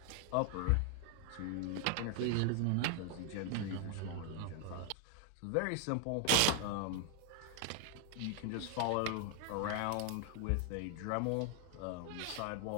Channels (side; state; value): both; different; correlation 0.00